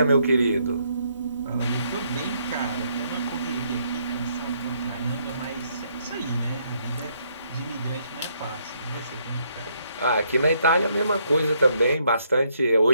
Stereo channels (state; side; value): inverted; both; correlation -0.72